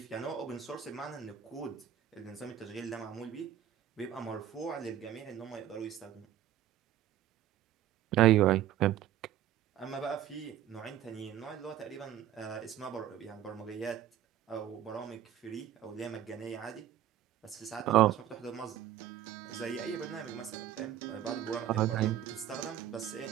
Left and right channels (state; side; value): quieter; left; 11.1 dB